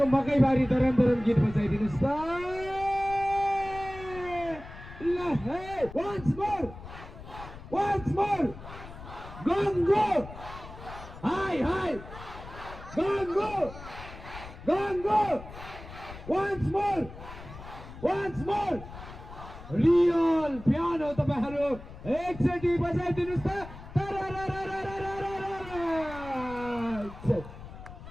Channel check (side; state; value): left; noise; rumble, 14 dB below the sound